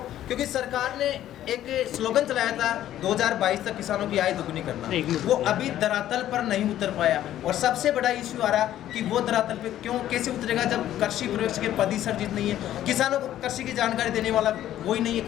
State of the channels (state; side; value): quieter; right; 12.4 dB